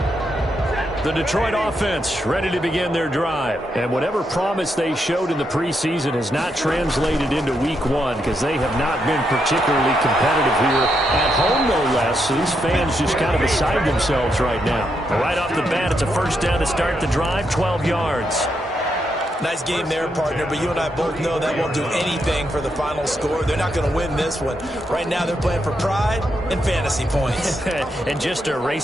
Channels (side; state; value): both; normal; correlation 0.81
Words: The Detroit offense ready to begin their drive. And whatever promise they showed in the preseason has not translated into week 1 because they have not been particularly competitive here at home, no less. So these fans just kind of beside themselves right now. Right off the bat, it's a first down to start the drive, 12 yards. Nice game there, partner, but you and I both know that won't do anything for the final score. They're not going to win this one. Right now, they're playing for pride and fantasy points. And just to